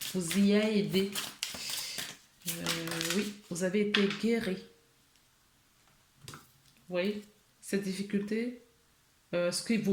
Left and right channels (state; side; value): identical; both; correlation 1.00